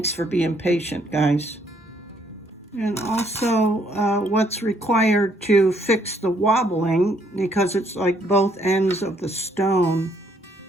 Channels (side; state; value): both; normal; correlation 0.68